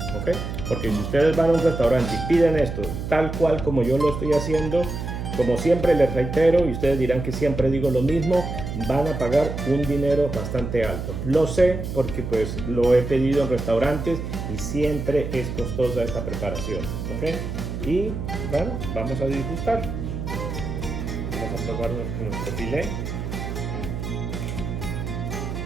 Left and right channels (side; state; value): right; noise; hum, 5 dB below the sound